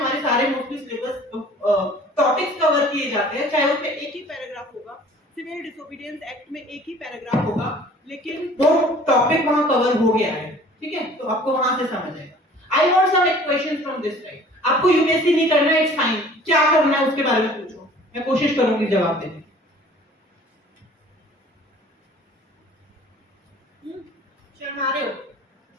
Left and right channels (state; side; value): normal; both; correlation 0.50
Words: सारे मोस्टली सिलेबस टॉपिक्स कवर किए जाते हैं, चाहे उसमें एक ही पैराग्राफ होगा, सिविल डिसोबीडियंस एक्ट में एक ही पैराग्राफ होगा, लेकिन वो टॉपिक वहां कवर हो गया है, ठीक है। तो आपको वहां से समझ आएगा। I want some questions from this side. आपको यूपीएससी नहीं करना है, इट्स फाइन, क्या करना है उसके बारे में पूछो, मैं कोशिश करूंगी जवाब देने। शर्मा रहे हो?